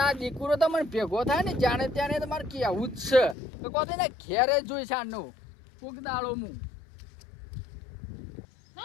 દીકરો તો મને ભેગો થાય ને જાણે ત્યાં તમારે કેવું જ છે તો કહો ને ઘેરે જ જોઈ સાંજનો કોક દાડો હું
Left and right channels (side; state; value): right; drops out; at 3.4 s